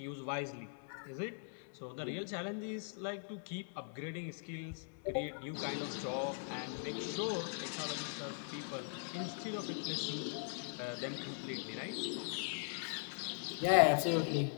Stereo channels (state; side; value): silent; right; digital silence